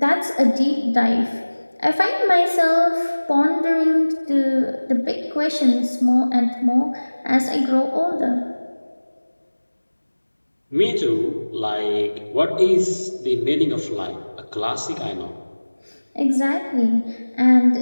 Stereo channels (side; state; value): both; inverted; correlation -1.00